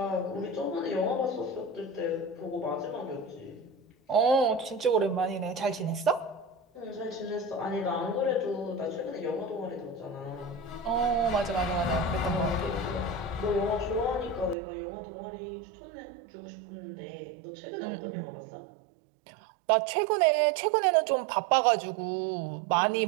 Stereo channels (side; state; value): left; drops out; at 14.6 s